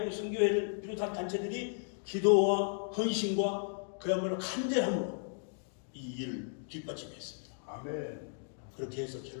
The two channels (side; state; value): right; silent; digital silence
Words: 선교회를 비롯한 단체들이 기도와 헌신과 그야말로 간절함으로 이 일을 뒷받침했습니다. 아멘. 그렇게 해서